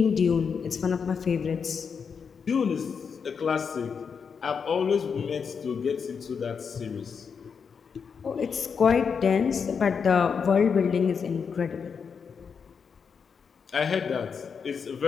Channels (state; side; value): quieter; right; 6.2 dB